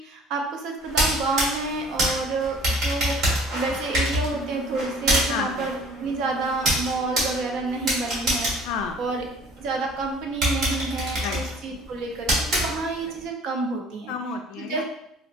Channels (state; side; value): normal; both; correlation 0.51